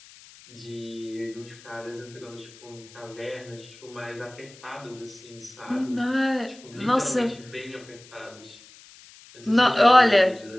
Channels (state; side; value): noise; left; hiss, 22 dB below the sound